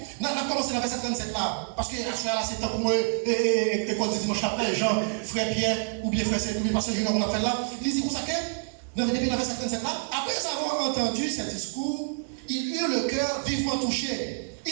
On a commencé dans le verset 37 là, parce que là c'est temps pour moi, école de dimanche après, Jean, frère Pierre, ou bien frère Saint, ou bien pasteur Junior, on a fait là. Il dit comme ça que, depuis le verset 37 là, après avoir entendu ce discours, il eut le cœur vivement touché.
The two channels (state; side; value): silent; left; 60 dB below the other